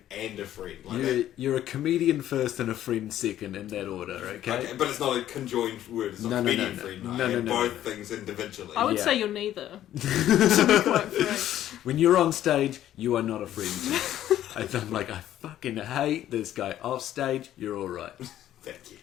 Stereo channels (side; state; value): right; quieter; 12.2 dB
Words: and a friend. You're a comedian first and a friend second in that order, okay? But it's not a conjoined word. It's not comedian friend. No, both things individually. I would say you're neither. To be quite frank. When you're on stage, you are not a friend. I'm like, I fucking hate this guy. Off stage, you're alright. Thank you.